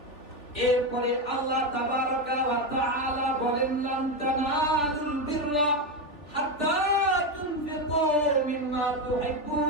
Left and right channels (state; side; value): late; right; 3.5 ms